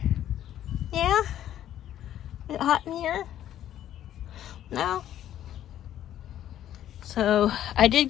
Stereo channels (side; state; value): right; quieter; 11.6 dB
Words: Yeah? Is it hot in here? No? So, I did